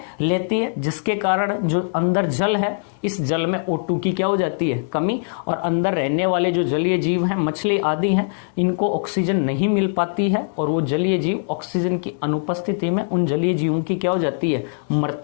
लेती है, जिसके कारण जो अंदर जल है, इस जल में O2 की क्या हो जाती है, कमी। और अंदर रहने वाले जो जलीय जीव हैं, मछली आदि हैं, इनको ऑक्सीजन नहीं मिल पाती है और वो जलीय जीव ऑक्सीजन की अनुपस्थिति में उन जलीय जीवों की क्या हो जाती है,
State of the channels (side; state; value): right; silent; digital silence